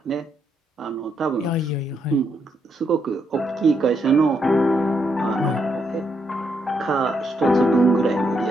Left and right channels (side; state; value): both; normal; correlation 0.78